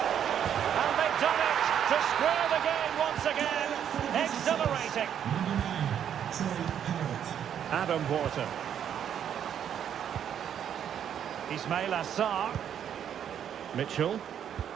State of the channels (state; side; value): quieter; left; 9.2 dB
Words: And they've done it to square the game once again. Exhilarating. Adam Wharton. Ismail Assar. Mitchell.